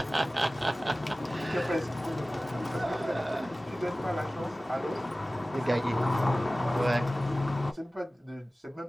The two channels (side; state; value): both; normal; correlation 0.97